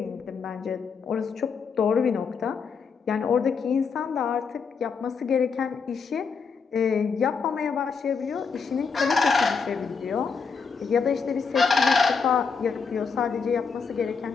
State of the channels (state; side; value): quieter; right; 5.5 dB